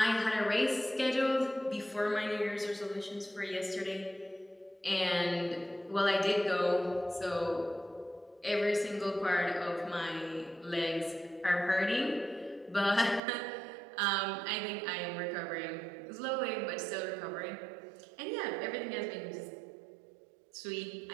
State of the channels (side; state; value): left; drops out; at 13.2 s